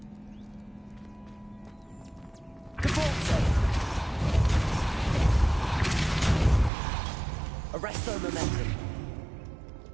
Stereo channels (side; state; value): left; drops out; at 6.7 s